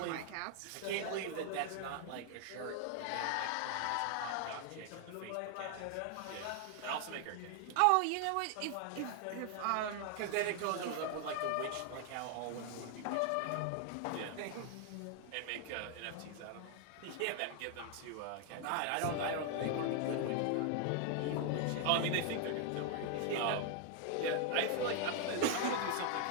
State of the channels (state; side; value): different; both; correlation 0.00